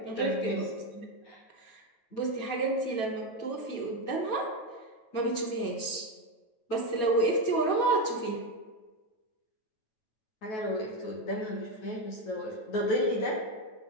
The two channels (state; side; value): late; right; 9.1 ms